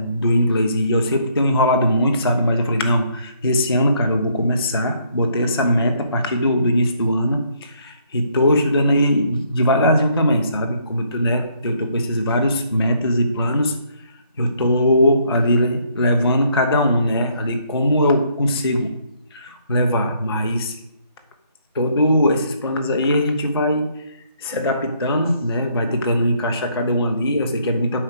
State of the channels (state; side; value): inverted; both; correlation -0.68